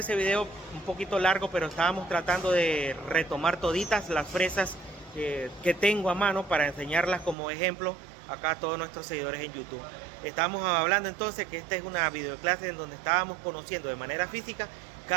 video un poquito largo, pero estábamos tratando de retomar toditas las fresas que tengo a mano para enseñarlas como ejemplo acá a todos nuestros seguidores en YouTube. Estábamos hablando entonces que esta es una videoclase en donde estábamos conociendo de manera física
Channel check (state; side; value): drops out; left; at 7.4 s